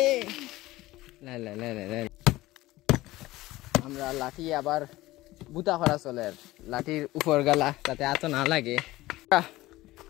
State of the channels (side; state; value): right; quieter; 17.9 dB